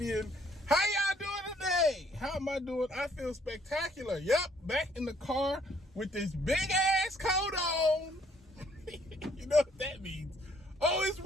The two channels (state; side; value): normal; both; correlation 0.64